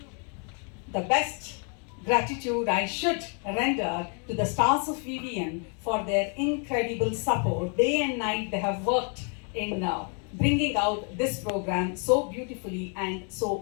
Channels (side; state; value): right; quieter; 38.6 dB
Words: the best gratitude I should render to the stars of VVN for their incredible support. Day and night they have worked in bringing out this program so beautifully and